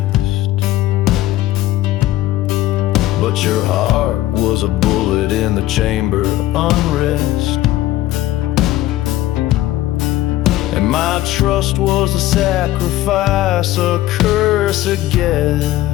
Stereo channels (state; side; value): quieter; right; 15.3 dB